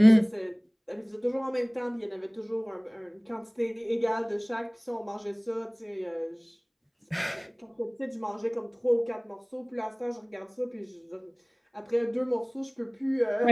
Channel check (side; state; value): both; identical; correlation 1.00